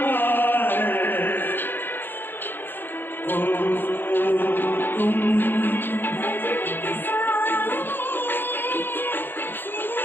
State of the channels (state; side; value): late; right; 0.097 ms